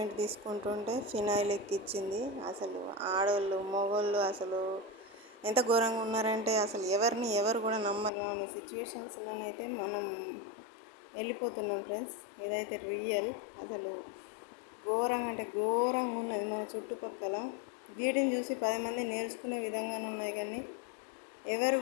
తీసుకుంటుంటే ఫినాయిల్ ఎక్కిచ్చింది. అసలు ఆడవాళ్ళు మగవాళ్ళు అసలు ఎంత ఘోరంగా ఉన్నారంటే అసలు ఎవరు కూడా నమ్మరాని సిచ్యువేషన్స్లోనైతే మనం వెళ్ళిపోతున్నాం ఫ్రెండ్స్. ఇదైతే రియల్. అసలు ఘోరంగా అంటే ఘోరంగా ఉన్నది మన చుట్టుపక్కల. వీటిని చూసి 10 మంది నేర్చుకునే విధంగానే ఉన్నాయి, కానీ ఎవరు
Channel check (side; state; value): right; drops out; at 8.1 s